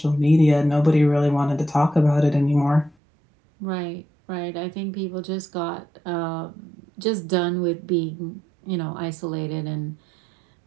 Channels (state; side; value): drops out; left; at 3.0 s